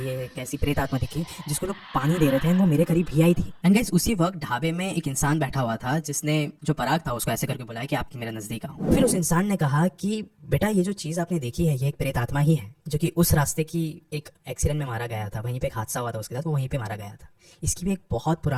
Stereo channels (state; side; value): identical; both; correlation 1.00